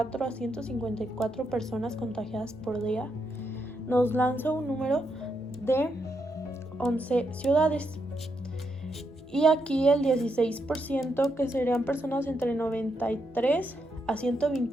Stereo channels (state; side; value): normal; both; correlation 0.80